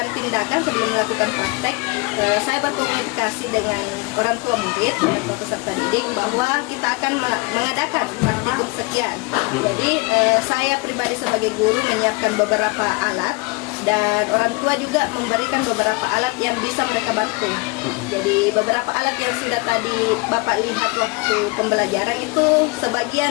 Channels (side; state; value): right; quieter; 26.6 dB